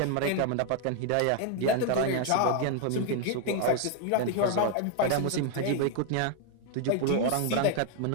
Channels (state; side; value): different; both; correlation 0.00